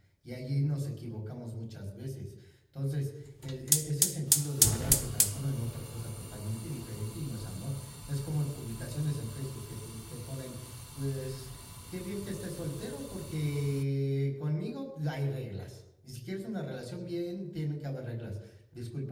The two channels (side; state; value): both; identical; correlation 1.00